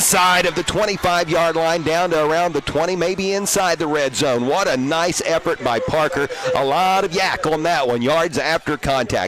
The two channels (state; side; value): identical; both; correlation 1.00